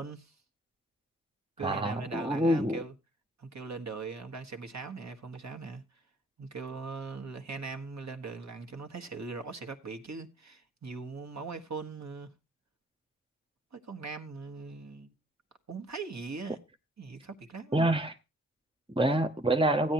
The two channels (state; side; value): normal; both; correlation 0.60